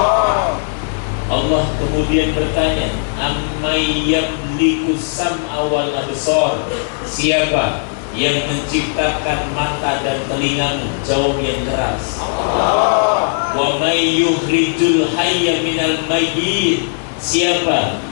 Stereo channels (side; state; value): right; silent; 68 dB below the other